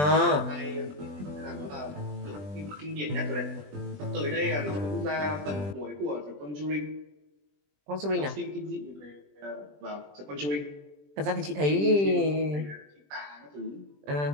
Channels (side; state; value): left; late; 20 ms